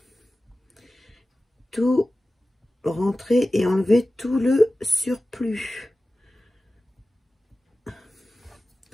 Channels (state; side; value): normal; both; correlation 0.96